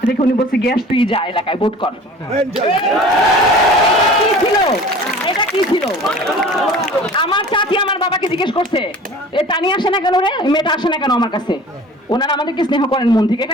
রেখে উনি বলছে গ্যাস তুই যা এলাকায় ভোট কর। কি ছিল এটা? কি ছিল? আমার চাচি আমার বাবাকে জিজ্ঞেস করছে এ তানি আসে না কেন রে, মেয়েটা আসে না কেন আমার কাছে? ওনারা আমাদেরকে স্নেহ করেন মন থেকে,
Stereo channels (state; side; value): normal; both; correlation 0.43